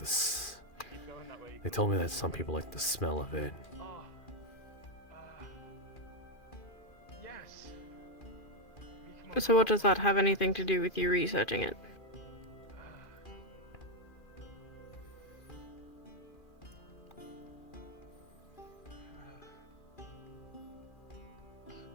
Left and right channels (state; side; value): late; right; 2.4 ms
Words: They told me that some people like the smell of it. So what does that have anything to do with you researching it?